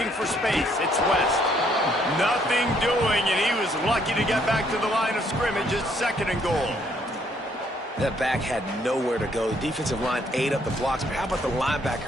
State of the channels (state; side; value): normal; both; correlation 0.68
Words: for space, it's West. Nothing doing, and he was lucky to get back to the line of scrimmage. It's second and goal. That back had nowhere to go. The defensive line ate up the blocks, but how about the